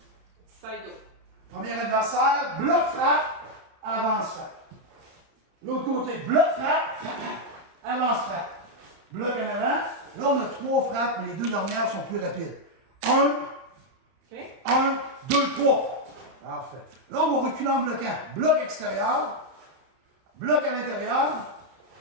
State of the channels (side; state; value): left; late; 31 ms